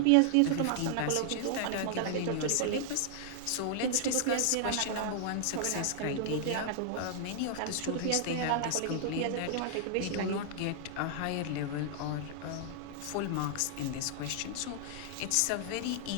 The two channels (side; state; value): both; different; correlation -0.01